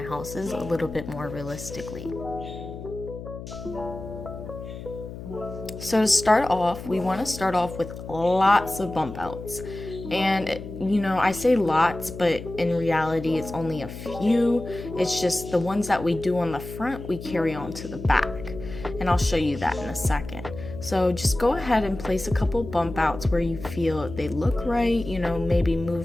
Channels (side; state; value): left; noise; hum, 11 dB below the sound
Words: houses a little bit more realistically. So to start off, we want to start off with lots of bump outs. And you know, I say lots, but in reality it's only a few. It's just the ones that we do on the front we carry on to the back, and I'll show you that in a second. So just go ahead and place a couple bump outs where you feel they look right, you know, maybe